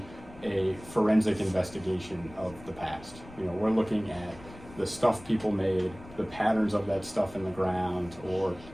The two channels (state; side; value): noise; left; rumble, 18 dB below the sound